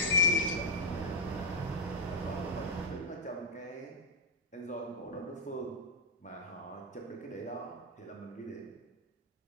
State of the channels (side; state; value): both; normal; correlation -0.04